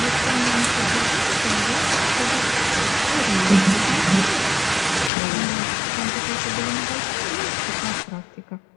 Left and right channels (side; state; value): right; drops out; at 5.1 s